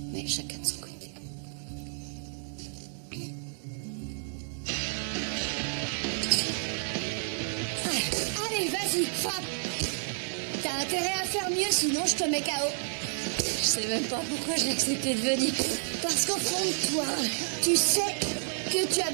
Mais chacun de son côté. Allez, vas-y, frappe. T'as intérêt à faire mieux, sinon je te mets KO. Je sais même pas pourquoi j'ai accepté de venir. Parce qu'au fond de toi, tu sais que tu as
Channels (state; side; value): silent; left; 58 dB below the other